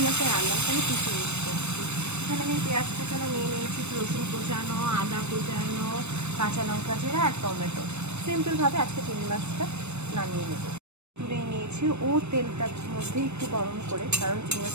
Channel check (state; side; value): late; left; 0.81 ms